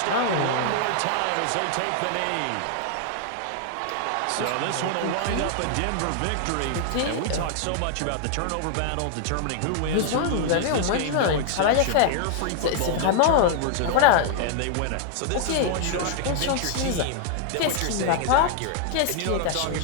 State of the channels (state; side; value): different; both; correlation 0.00